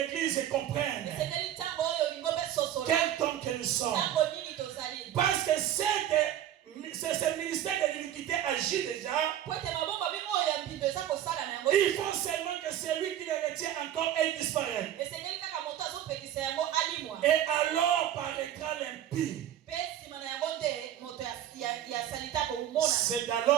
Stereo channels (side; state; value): left; quieter; 11.3 dB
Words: comprenne. Quel temps que nous sommes. Parce que ce ministère de l'iniquité agit déjà. Il faut seulement que celui qui le retient encore ait disparu. Et alors paraîtra l'impie. C'est